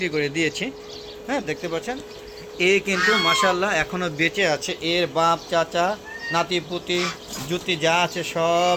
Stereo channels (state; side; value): identical; both; correlation 1.00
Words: করে দিয়েছি। দেখতে পাচ্ছেন এ কিন্তু মাশাআল্লাহ এখনও বেঁচে আছে। এর বাপ চাচা নাতি পুতি জুতি যা আছে সব